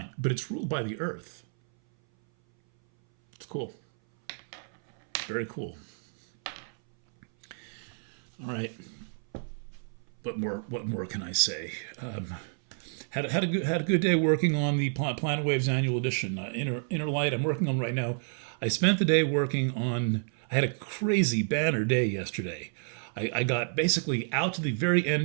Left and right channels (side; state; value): left; silent; 58 dB below the other